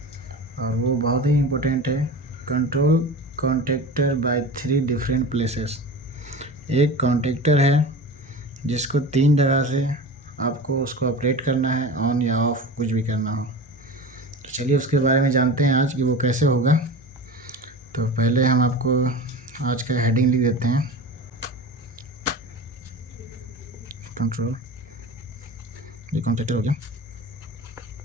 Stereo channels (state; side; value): normal; both; correlation 0.32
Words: और वो बहुत ही इम्पोर्टेंट है। Control contactor by 3 different places. एक कॉन्टेक्टर है जिसको 3 जगह से आपको उसको ऑपरेट करना है, ऑन या ऑफ कुछ भी करना हो। तो चलिए उसके बारे में जानते हैं आज कि वो कैसे होगा। तो पहले हम आपको आज का हेडिंग लिख देते हैं। कंट्रोल, ये कॉन्टेक्टर हो गया।